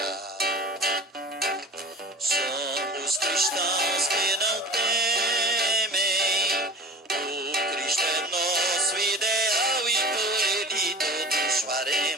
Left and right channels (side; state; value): both; normal; correlation 0.38